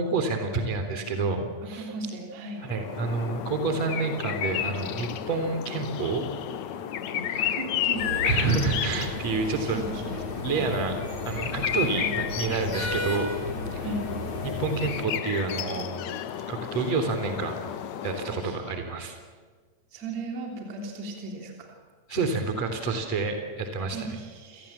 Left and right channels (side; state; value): right; late; 8.9 ms